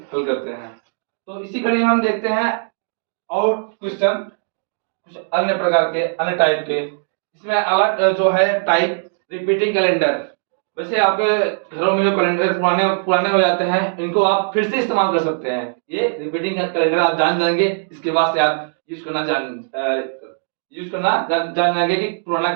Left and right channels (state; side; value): silent; left; digital silence